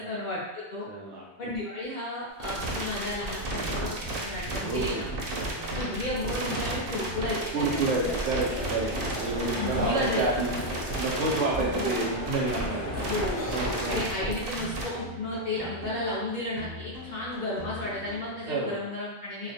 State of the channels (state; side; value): normal; both; correlation 0.02